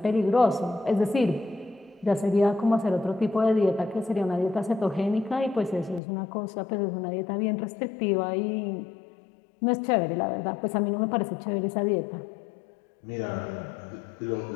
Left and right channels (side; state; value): right; drops out; at 6.0 s